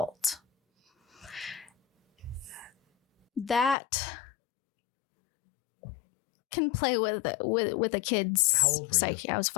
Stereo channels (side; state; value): right; drops out; at 3.8 s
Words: That can play with a kid's How old were psyche. you? I was